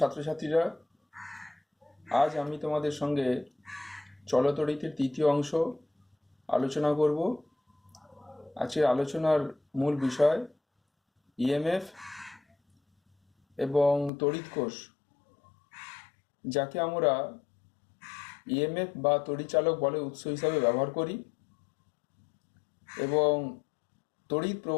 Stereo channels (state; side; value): drops out; right; at 14.1 s